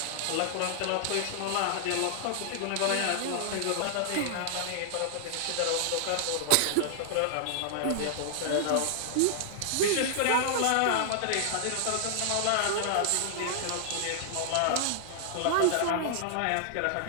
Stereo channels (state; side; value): different; both; correlation -0.01